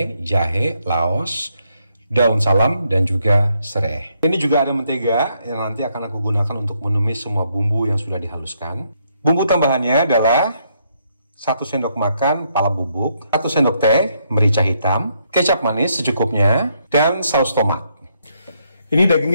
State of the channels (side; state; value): both; inverted; correlation -0.75